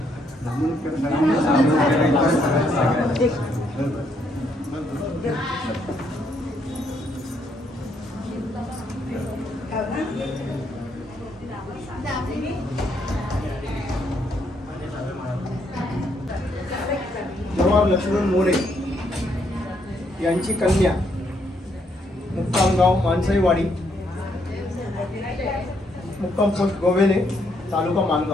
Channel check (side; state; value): both; normal; correlation 0.73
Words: जवाहर लक्ष्मण मोरे यांची कन्या, मुक्काम गाव माणसाईवाडी, मुक्काम पोस्ट गोवेले, तालुका